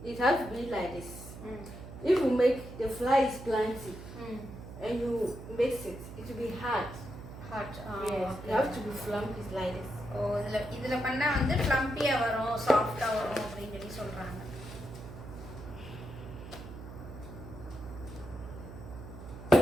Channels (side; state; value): right; noise; hum, 13 dB below the sound